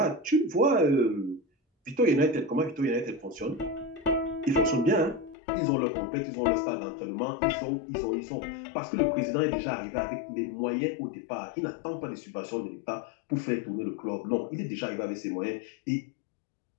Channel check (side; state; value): right; drops out; at 5.4 s